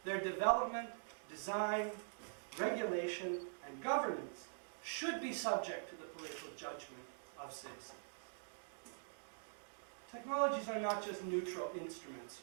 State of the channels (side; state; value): left; silent; digital silence